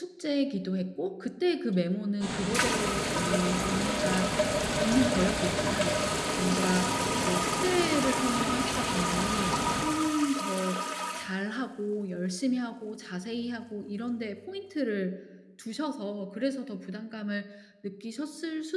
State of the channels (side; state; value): both; identical; correlation 1.00